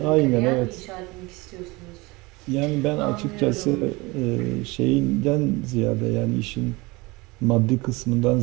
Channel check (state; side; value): quieter; left; 23.8 dB